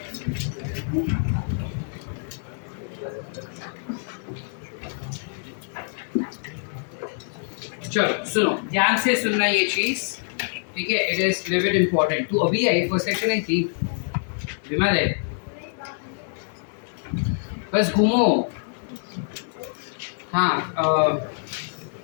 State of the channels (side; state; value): right; silent; digital silence